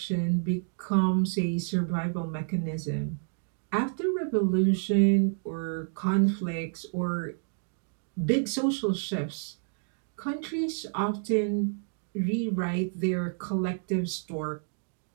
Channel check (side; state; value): left; silent; digital silence